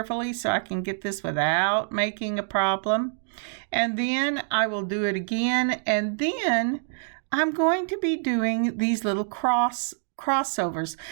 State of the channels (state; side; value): silent; left; digital silence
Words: so I can get this without making a problem. And then I will do it again. And then I'm going to be doing these little crossovers.